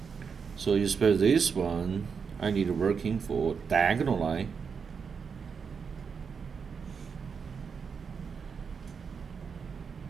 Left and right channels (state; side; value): quieter; left; 6.0 dB